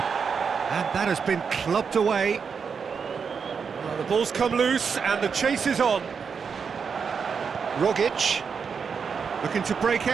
And that has been clubbed away. Well, the ball's come loose and the chase is on. Rogic looking to break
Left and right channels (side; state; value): left; quieter; 6.1 dB